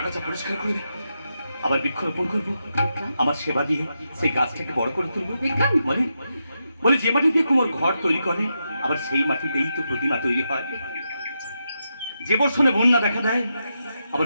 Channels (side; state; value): both; inverted; correlation -0.86